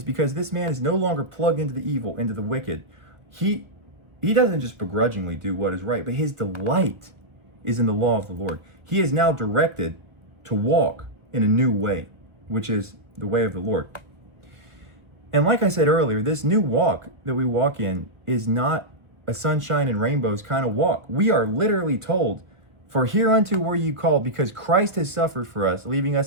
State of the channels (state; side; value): late; left; 1.3 ms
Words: because this man is no longer plugged into the evil, into the wicked. He doesn't just begrudgingly do what is right, but his delight is in the law of the Lord. He is now directed to walk in a new way, which is the way of the Lord. And like I said earlier, this new walk that we walk in is not a sunshine and rainbows kind of walk. We are literally told, "For hereunto were you called," because Christ has suffered for us, leaving